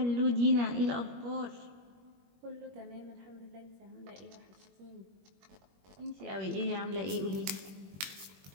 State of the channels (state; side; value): late; left; 21 ms